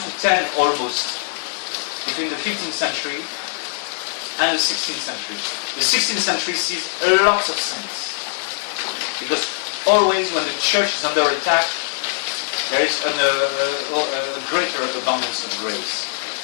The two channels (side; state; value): right; silent; 65 dB below the other